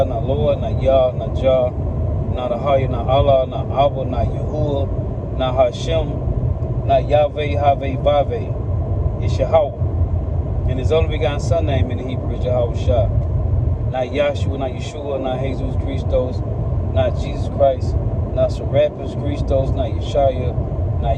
not Lord, not Yah, not Jah, not Ahaya, not Allah, not Abba, not Yahuwah, not Hashem, not Yahweh, Haveh, Vaveh. It's Yahweh. And his only begotten son name in the Hebrew is Yahweh Shah. Not Yahshua, not Yeshua, not Jesus Christos, not Jesus Christ, not Serapis Christos, not Yeshaya, not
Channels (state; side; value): identical; both; correlation 1.00